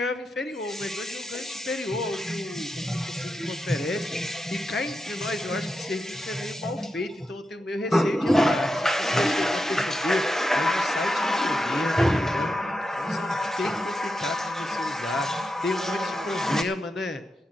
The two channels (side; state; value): both; normal; correlation 0.87